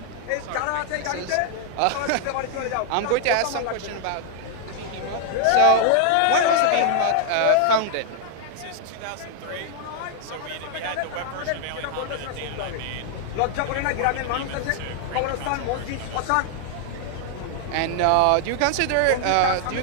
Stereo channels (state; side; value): different; both; correlation 0.00